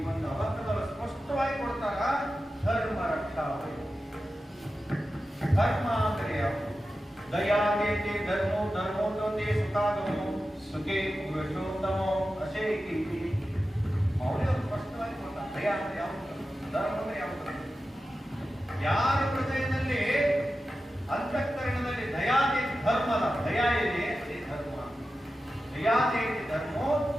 ಒಂದು ಅಬದ್ಧದಲ್ಲಿ ಸ್ಪಷ್ಟವಾಗಿ ಕೊಡ್ತಾರ, ಧರ್ಮ ರಕ್ಷಾ. ಧರ್ಮ ಅಂದರೆ ಯಾವುದು? ದಯಾದೇತಿ ಧರ್ಮೋ ಧರ್ಮೋದೋತೆ ಸುಖಾಗಮೋ ಸುಖೇ ಪುರುಷೋತ್ತಮೋ ಅಶೇಕಿ. ಅವರೇ ಸ್ಪಷ್ಟವಾಗಿ ಕೊಡ್ತಾರೆ ದಯಾ ಅಂದ್ರೆ ಯಾವುದು, ಧರ್ಮ ಅಂದ್ರೆ ಯಾವುದು. ಯಾರ ಹೃದಯದಲ್ಲಿ ಅಂತಃಕರಣದಲ್ಲಿ ದಯಾದೇತಿ ಧರ್ಮದ ದಯಾ ಇದೆ, ಅದೇ ಧರ್ಮ. ದಯಾದೇತಿ ಧರ್ಮೋ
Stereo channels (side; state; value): both; normal; correlation 0.93